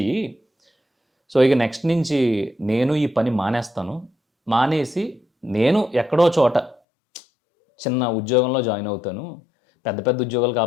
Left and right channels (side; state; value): right; drops out; at 6.8 s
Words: సో, ఇక నెక్స్ట్ నుంచి నేను ఈ పని మానేస్తాను. మానేసి నేను ఎక్కడో చోట చిన్న ఉద్యోగంలో జాయిన్ అవుతాను. పెద్ద పెద్ద ఉద్యోగాలు